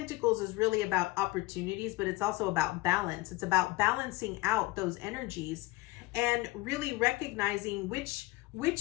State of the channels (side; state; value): right; quieter; 21.3 dB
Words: is really about opportunities, but it's also about balance. It's about balancing out those energies and really recognizing which